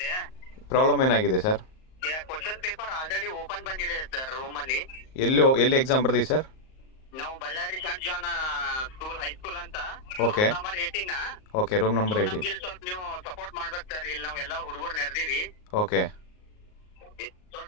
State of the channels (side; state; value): right; late; 38 ms